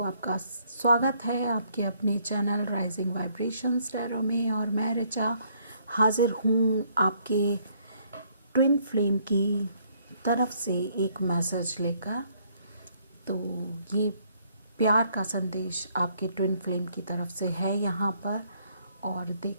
आपका स्वागत है आपके अपने चैनल राइजिंग वाइब्रेशंस टैरो में। और मैं ऋचा हाजिर हूँ आपके ट्विन फ्लेम की तरफ से एक मैसेज लेकर। तो ये प्यार का संदेश आपके ट्विन फ्लेम की तरफ से है यहाँ पर। और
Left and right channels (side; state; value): both; inverted; correlation -0.67